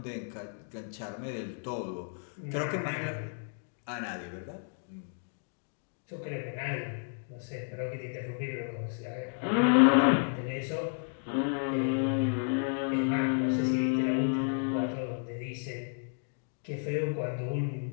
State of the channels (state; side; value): silent; right; 56 dB below the other